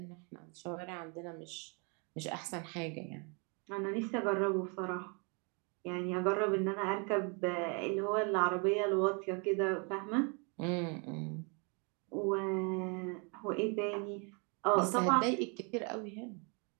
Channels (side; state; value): left; quieter; 34.6 dB